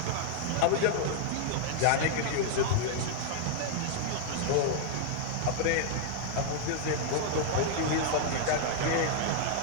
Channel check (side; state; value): both; different; correlation 0.00